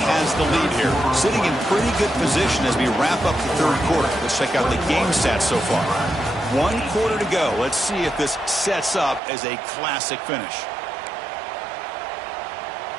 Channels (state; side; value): drops out; left; at 9.2 s